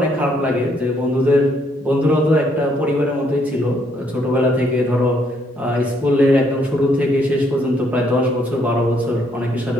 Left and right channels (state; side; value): normal; both; correlation 0.70